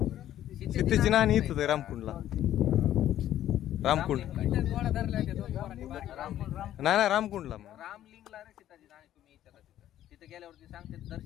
सीतेची नाणी इथं आहे रामकुंडला रामकुंड नाही रामकुंडला मग रामलिंगला रे सीताची नाणी तुम्ही विचारा तिथं तिथे गेल्यावरती सांगते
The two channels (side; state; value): right; quieter; 12.2 dB